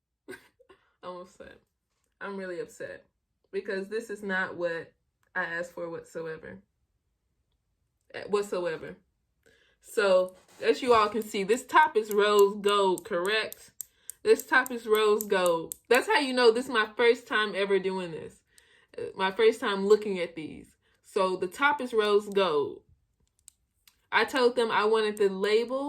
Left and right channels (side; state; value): both; identical; correlation 1.00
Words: I'm upset. I'm really upset because this is not what I asked for whatsoever. Whatsoever. So, as you all can see, this top is rose gold, correct? This top is rose gold. That's how you know this is my first time ever doing this. My first time looking at these. So, the top is rose gold. I told them I wanted the